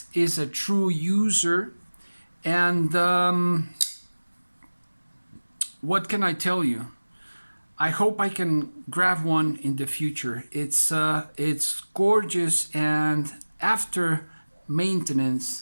is a true user, and what can I tell you? I hope I can grab one in the future. It's gorgeous, and after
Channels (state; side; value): inverted; both; correlation -1.00